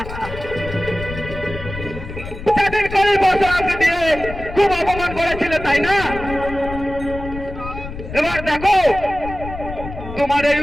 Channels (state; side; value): noise; left; rumble, 10 dB below the sound